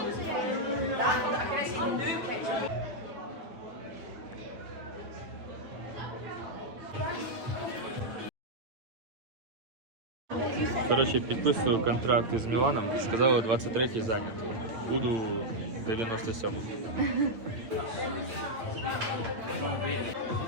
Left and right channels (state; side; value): late; left; 8.9 ms